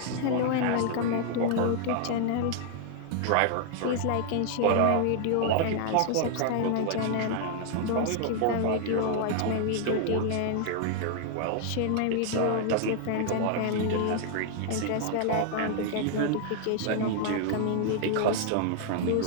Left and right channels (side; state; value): both; different; correlation 0.00